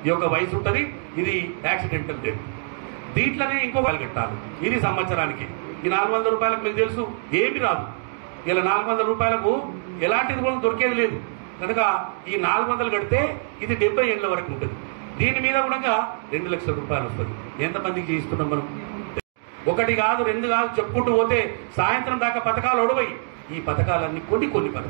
ఈ యొక్క వయసు ఉంటుంది. ఇది యాక్సిడెంటల్ డెత్. దీంట్లోనే ఇంకో కట్టాలి. ఇది సంవత్సరానికి. ఈ 400 రూపాయలకు మీకు తెలుసు ఏమి రాదు. ఇలా 400 రూపాయలకు ఎలాంటిది కూడా దొరికేది లేదు కనుక ఈ 400 కడితే ఇది 70 ఏళ్ళ వరకు ఉంటుంది. దీని మీద కూడా 2 లక్షల రూపాయలు వస్తుంది. ఎంతమందికి చేయిస్తున్నాం మనం? 1 కాదు 2 కాదు చెప్పుకుంటూ పోతే సాయంత్రం దాకా పథకాలు ఒడవయి. ఈ పథకాలన్నీ కొన్ని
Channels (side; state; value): left; silent; digital silence